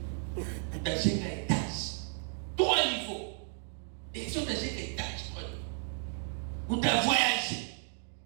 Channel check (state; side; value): silent; left; 56 dB below the other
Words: Utajenga etage 3 niveau. Et si utajenga etage 3 niveau, utavoyager,